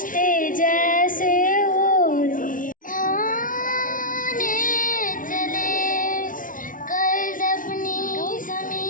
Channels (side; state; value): right; late; 0.39 ms